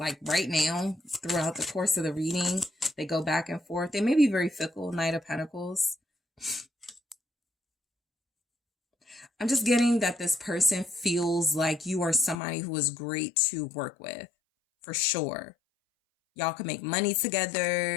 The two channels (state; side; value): drops out; right; at 12.4 s